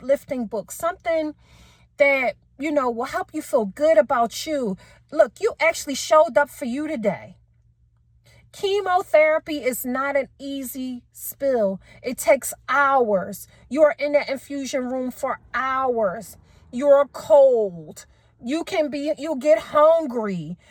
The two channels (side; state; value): both; identical; correlation 1.00